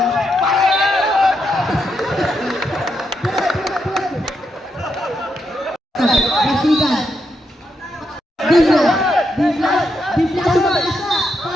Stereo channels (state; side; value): normal; both; correlation 0.81